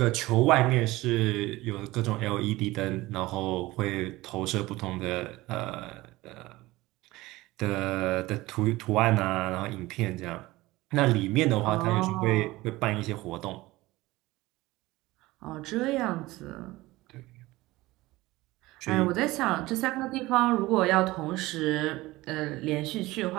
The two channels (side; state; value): left; quieter; 19.2 dB